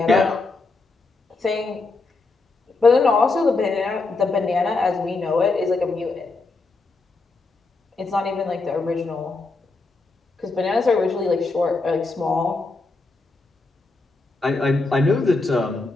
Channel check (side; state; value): right; quieter; 3.6 dB